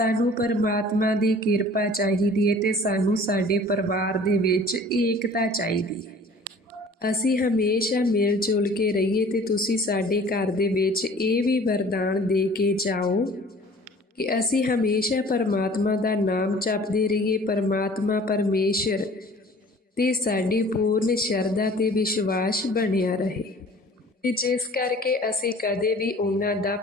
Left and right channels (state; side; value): normal; both; correlation 0.48